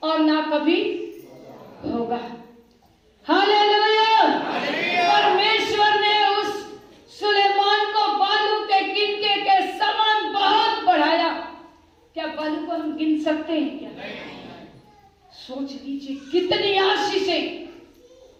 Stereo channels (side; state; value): both; identical; correlation 1.00